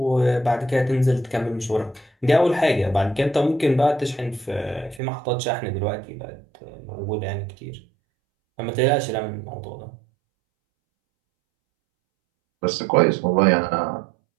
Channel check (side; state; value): left; drops out; at 5.0 s